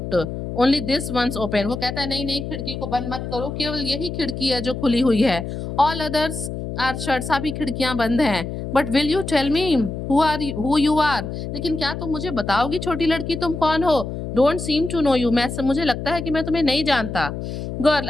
only this once open. वो कहता है नहीं नहीं, खिड़की को बंद मत करो, केवल यही खिड़की है जो खुली हुई है. ऑल अदर्स आर शट, सभी खिड़कियां बंद हैं. But will you tell me who you are, लेकिन क्या तुम मुझे बताओगी छोटी लड़की तुम कौन हो. Don't seem to know you, मुझे लगता है कि मैं तुम्हें नहीं जानता. Girl,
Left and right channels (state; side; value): noise; left; hum, 6 dB below the sound